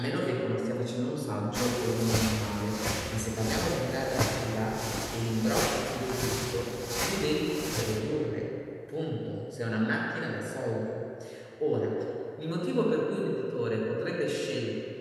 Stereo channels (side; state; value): both; identical; correlation 1.00